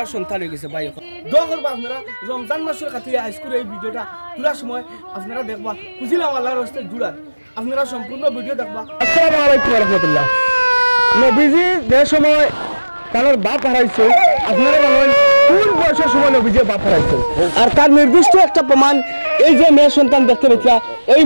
সন্তান হয়ে গেছে ভাই এখন দোয়া করবো আপনারা রমজান মাসের খাতিরে হাইস্কুল এই ভিডিওটা তোলার সময় আপনারা দেখবা খুঁজিলাম আল্লাহর হস্তে জুড়ার আপনারা সম্পূর্ণ ভিডিও দেখবা। আসসালামু আলাইকুম রহমতুল্লাহ। নবীজি যে সময় তার বাপ হারাইছে আপনারা জানেন কোন বয়সের সময় নবীজি বাপ হারাইছে আর তার নির্দিষ্ট একটা প্রমাণ এই যে মেয়ে সন্তান দেখতে পেয়েছিলা এই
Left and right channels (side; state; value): both; inverted; correlation -1.00